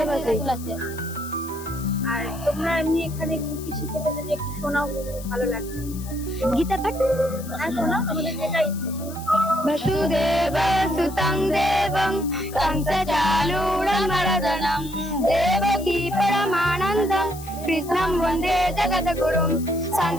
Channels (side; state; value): left; noise; hiss, 16 dB below the sound